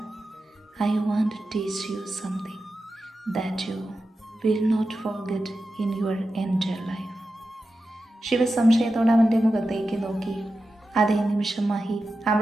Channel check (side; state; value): both; normal; correlation 0.91